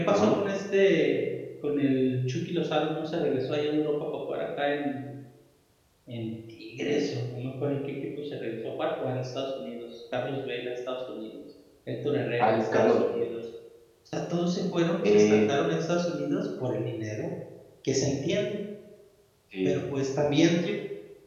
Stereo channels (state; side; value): identical; both; correlation 1.00